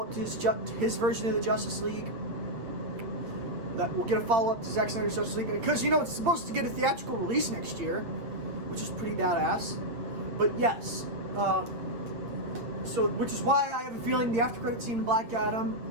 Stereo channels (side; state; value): left; late; 8.8 ms